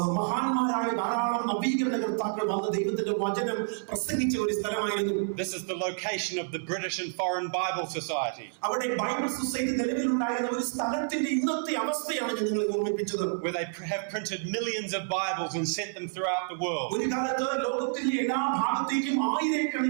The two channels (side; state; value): left; silent; 59 dB below the other